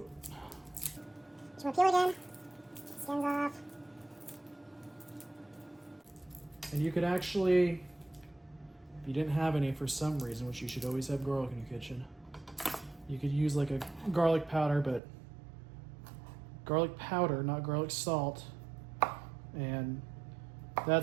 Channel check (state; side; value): drops out; left; at 15.0 s